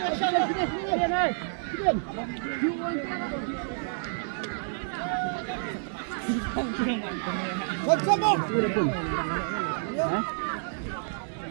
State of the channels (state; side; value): silent; left; digital silence